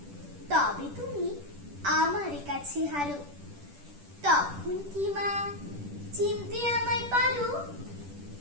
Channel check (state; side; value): late; left; 10 ms